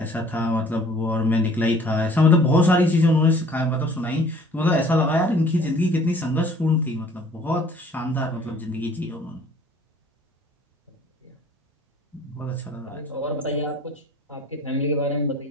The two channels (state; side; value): normal; both; correlation 0.53